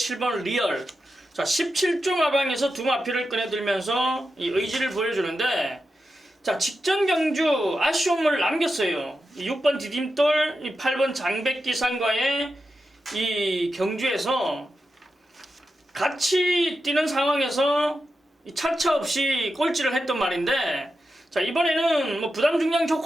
리얼. 자, 17종 하방에서 두 마피를 꺼내들면서 이 의지를 보여주는데, 자, 직전 경주 아쉬움을 남겼어요. 이 6번 디딤돌, 이 8번 장백기상과의 이 경주에서 같이 뛰는 상황에서 이 차차 없이 꼴찌를 했던 말인데, 자, 이번에는 뭐 부담 중량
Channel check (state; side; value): normal; both; correlation 0.89